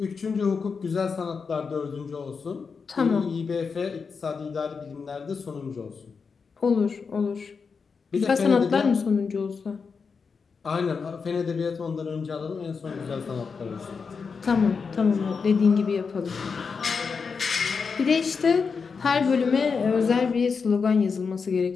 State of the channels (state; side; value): quieter; right; 5.4 dB